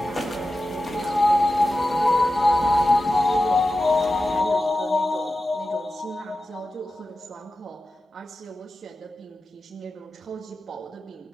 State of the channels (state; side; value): normal; both; correlation 0.93